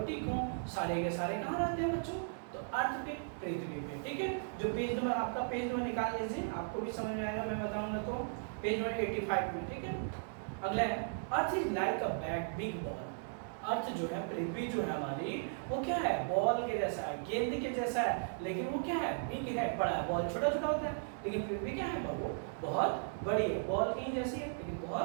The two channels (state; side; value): silent; left; digital silence